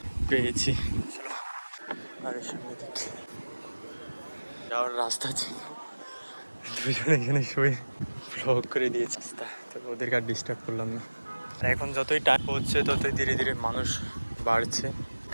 পেয়েছি, আর সামনে দিকে যাওয়ার রাস্তা ছিল। দুজনে এখানে শুয়ে ব্লগ করে দিয়েছে রাস্তা, তো ওদেরকে আর ডিস্টার্ব করলাম না। আর এখন যতই টাইম হচ্ছে ততই ধীরে ধীরে মানুষ বাড়ছে,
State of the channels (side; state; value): both; inverted; correlation -1.00